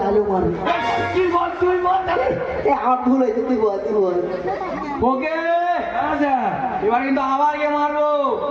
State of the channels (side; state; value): both; identical; correlation 1.00